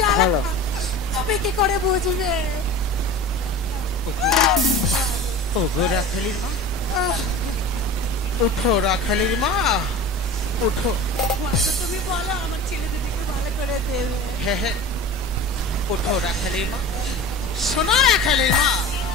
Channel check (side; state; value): both; normal; correlation 0.35